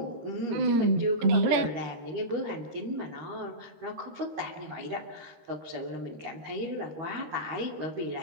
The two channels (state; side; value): late; left; 13 ms